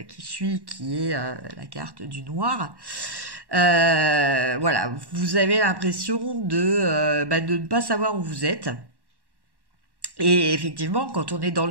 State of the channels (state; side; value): late; left; 1.1 ms